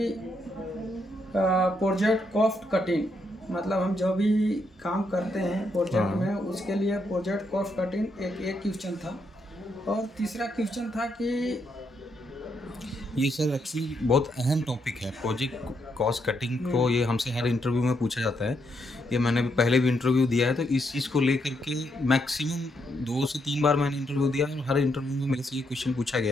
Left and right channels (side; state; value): both; normal; correlation 0.78